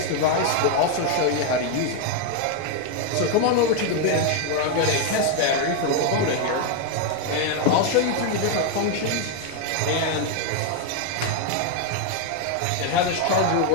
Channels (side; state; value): both; different; correlation 0.01